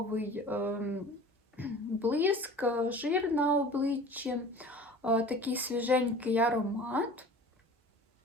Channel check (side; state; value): both; normal; correlation 0.42